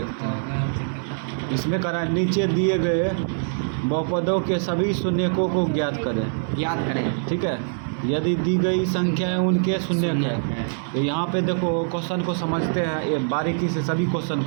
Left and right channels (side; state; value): left; silent; digital silence